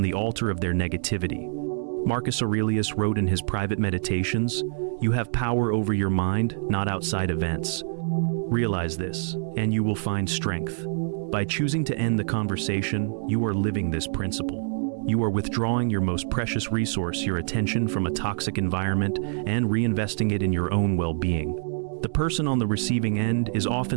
the altar of their negativity. Marcus Aurelius wrote in his private meditations, "You have power over your mind, not outside events." Realize this, and you will find strength. By choosing to end the conversation, you are living this principle. You are withdrawing your most precious resource, your attention, from a toxic environment and reinvesting it in your own well-being. The person on the receiving end is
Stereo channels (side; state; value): left; silent; digital silence